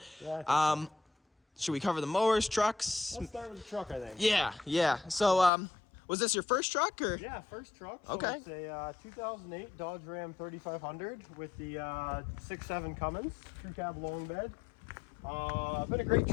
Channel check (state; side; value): drops out; right; at 5.5 s